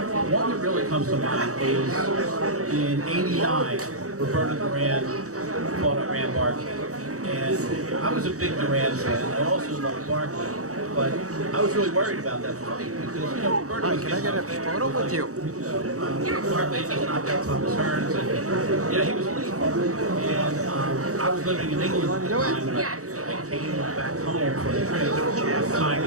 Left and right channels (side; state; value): left; late; 0.65 ms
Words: one that really comes to mind is in '89, Roberto Duran fought at Weinberg, and I was a big Duran fan. I also loved Barkley, but I was really worried about that fight because Roberto was getting up there. Photo with you. Barkley just knocked out Thomas Hearns, and he was leading. And I was living in England at the time, and I came back home for the time